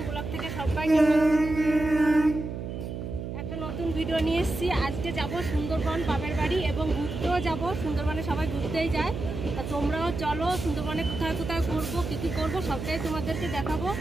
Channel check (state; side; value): noise; right; hum, 6 dB below the sound